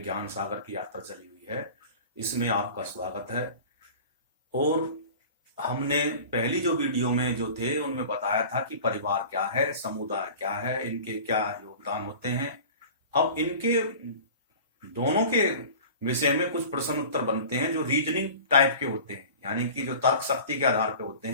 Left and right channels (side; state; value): both; inverted; correlation -0.39